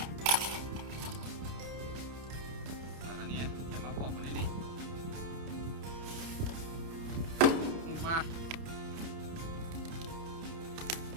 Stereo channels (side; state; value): left; late; 30 ms